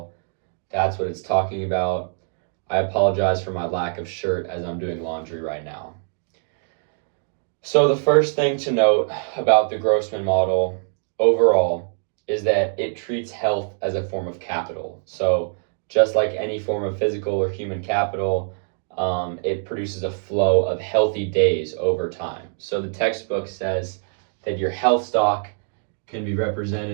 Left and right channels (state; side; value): silent; left; digital silence